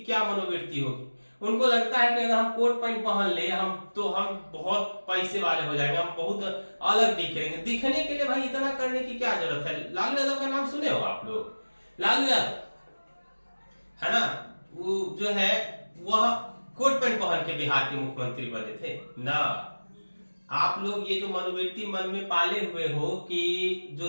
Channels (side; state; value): both; inverted; correlation -1.00